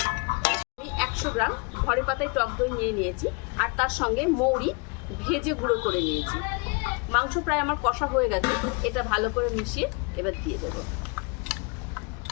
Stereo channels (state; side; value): quieter; right; 32.1 dB